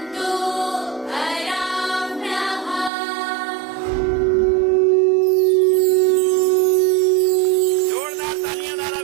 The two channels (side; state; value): left; drops out; at 2.9 s